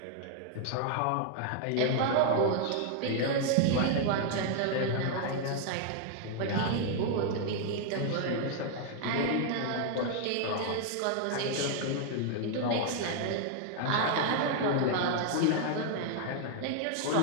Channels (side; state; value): both; different; correlation 0.00